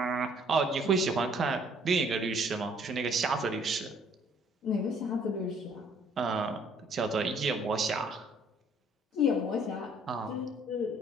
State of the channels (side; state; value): both; normal; correlation 0.60